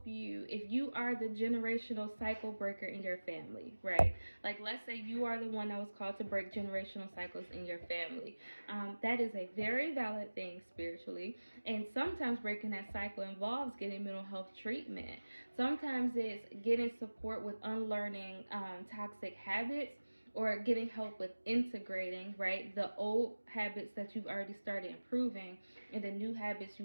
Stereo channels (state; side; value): inverted; both; correlation -1.00